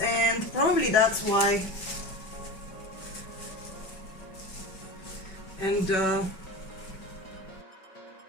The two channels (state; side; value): late; right; 5.3 ms